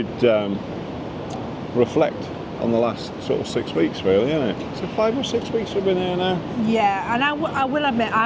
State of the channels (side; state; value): both; identical; correlation 1.00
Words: reflect on the last sort of 6 weeks, really, isn't it? So 5 or 6 weeks we've been here now. Yeah, and I will admit